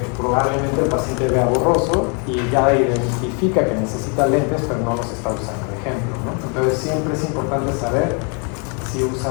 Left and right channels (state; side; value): quieter; right; 37.1 dB